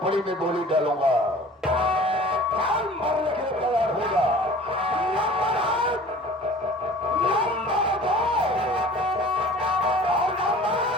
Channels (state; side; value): normal; both; correlation 0.45